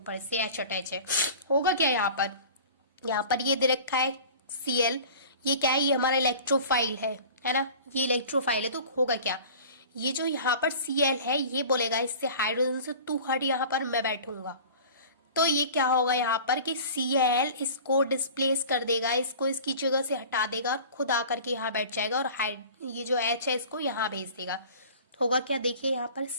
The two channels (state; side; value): inverted; both; correlation -0.41